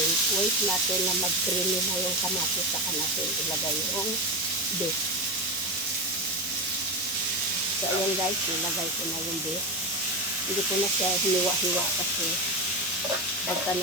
wait natin na mag-creamy na yung kamatis, saka natin ilagay yung beef. So, ayan guys, ilagay ko na yung beef. Hindi ko na siya hiniwa-hiwa kasi pagka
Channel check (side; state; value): both; normal; correlation 0.17